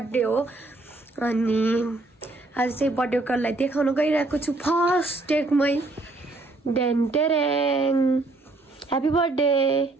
हो अनि आज चाहिँ बर्थडे गर्ललाई देखाउन गइरहेको छु फर्स्ट टेकमै। डेन टेरेङ, ह्यापी बर्थडे।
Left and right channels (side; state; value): left; quieter; 3.0 dB